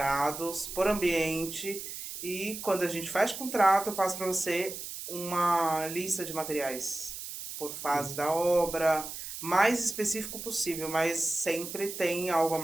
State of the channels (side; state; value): right; noise; hiss, 9 dB below the sound